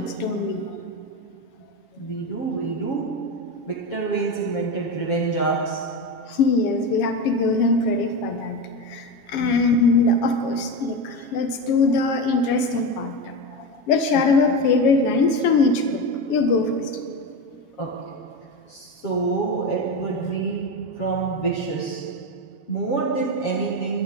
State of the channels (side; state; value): right; late; 7.3 ms